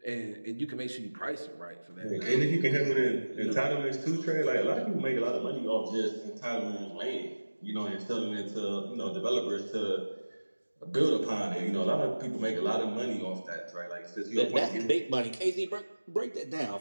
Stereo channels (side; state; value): both; inverted; correlation -1.00